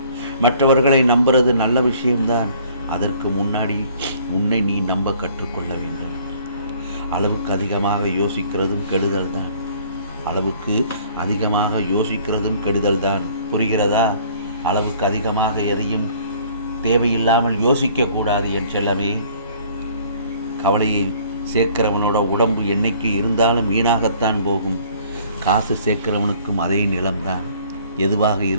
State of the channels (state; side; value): inverted; both; correlation -0.56